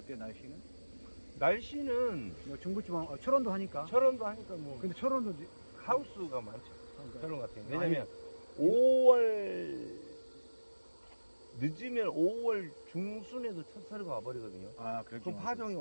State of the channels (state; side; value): inverted; both; correlation -1.00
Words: 날씨는 뭐 중부지방 철원도 하니까. 철원도 하니까 뭐. 근데 철원도 하우스가 많죠. 철원 같은 경우. 아니, 왜냐면 5월 늦으면 5월 중순에도 첫 설이가 와버리거든요. 그럼 파종이